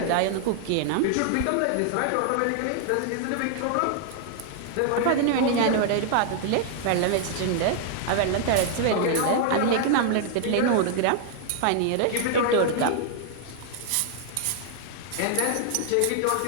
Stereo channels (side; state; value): both; different; correlation 0.00